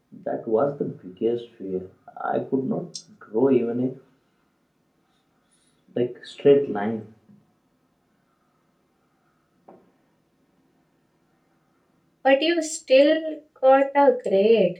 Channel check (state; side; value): identical; both; correlation 1.00